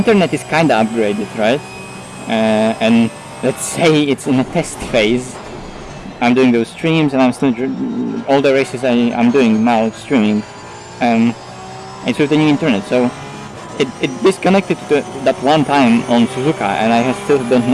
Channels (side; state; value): both; identical; correlation 1.00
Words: is kinda upgraded, right? And let's say it's in a test phase. I'm doing those streams and I'm still all the races I'm doing now streaming. It's with the new internet, so it disconnected to that one time on Suzuka, and I still don't